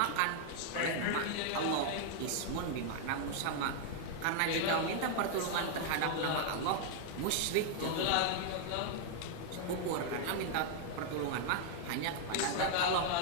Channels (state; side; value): different; both; correlation 0.00